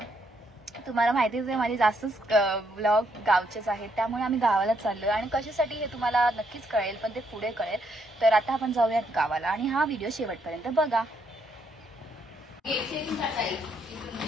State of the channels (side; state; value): both; normal; correlation 0.73